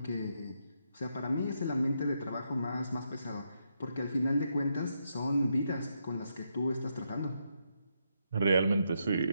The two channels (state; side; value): inverted; both; correlation -0.80